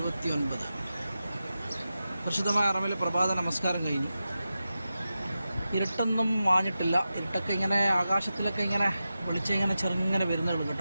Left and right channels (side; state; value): both; inverted; correlation -0.92